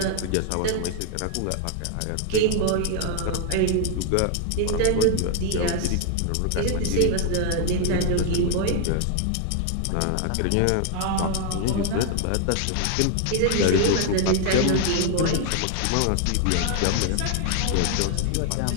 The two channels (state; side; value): different; both; correlation 0.00